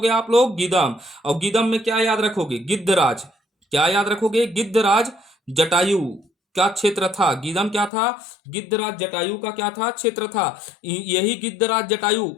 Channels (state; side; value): drops out; right; at 7.9 s